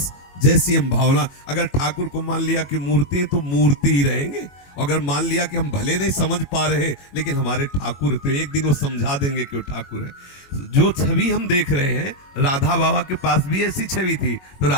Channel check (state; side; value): late; right; 22 ms